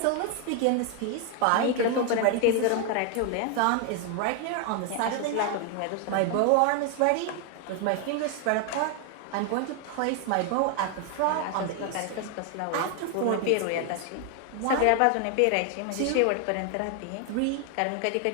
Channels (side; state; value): both; different; correlation 0.00